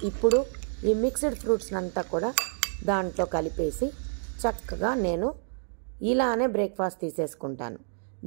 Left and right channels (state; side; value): silent; left; 59 dB below the other